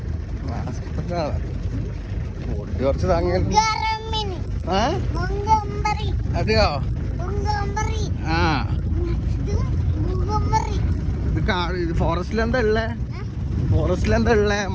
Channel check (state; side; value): identical; both; correlation 1.00